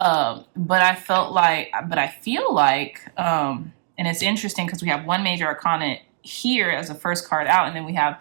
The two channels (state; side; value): silent; left; digital silence